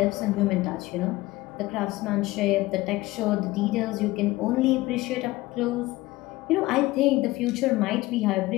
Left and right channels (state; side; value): quieter; right; 19.1 dB